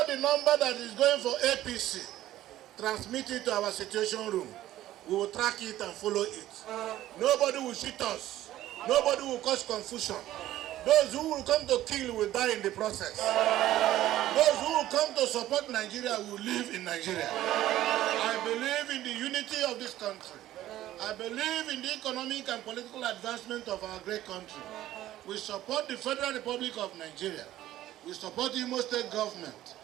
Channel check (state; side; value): quieter; left; 14.0 dB